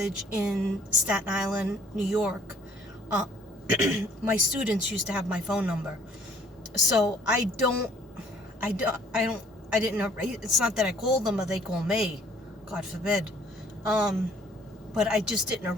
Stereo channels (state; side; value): normal; both; correlation 0.58